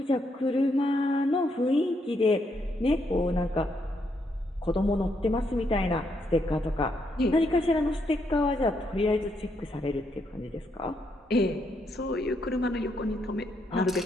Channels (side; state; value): both; normal; correlation 0.77